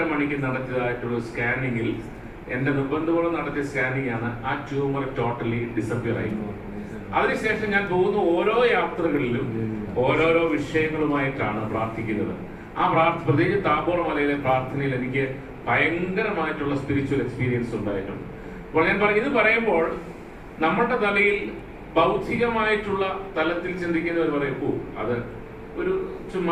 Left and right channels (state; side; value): identical; both; correlation 1.00